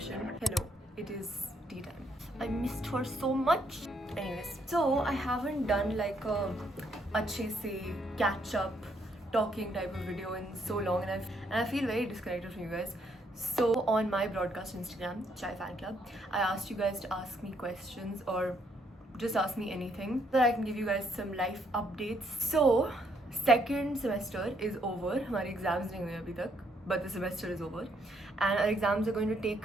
Hello, it is tea time. I missed her so much. Anyways, so I haven't done like a अच्छे से catch up talking type of video in so long, and I feel very disconnected from you guys. So on my broadcast Instagram, Chai Fan Club, I asked you guys to ask me questions or just ask me anything so that I can give you guys some life updates. So second semester is over. हमारे exams नहीं हुए अभी तक, but the semester is over, and our exams are going to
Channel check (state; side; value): normal; both; correlation 0.72